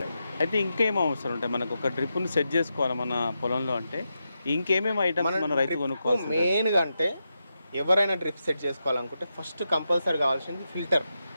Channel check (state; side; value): inverted; both; correlation -0.87